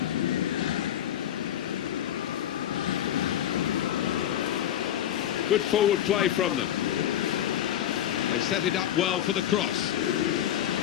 Good forward play from them. They set it up well for the cross.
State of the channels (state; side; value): quieter; right; 11.0 dB